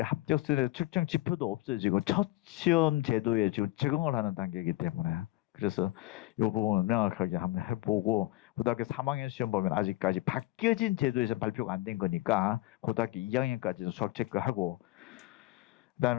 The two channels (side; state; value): right; quieter; 18.2 dB